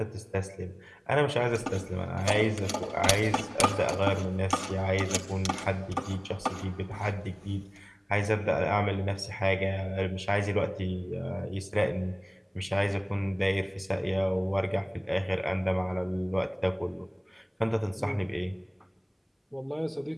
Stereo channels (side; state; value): both; identical; correlation 1.00